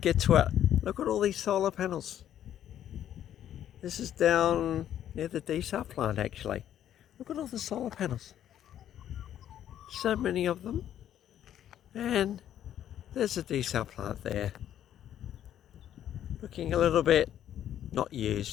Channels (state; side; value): quieter; right; 10.8 dB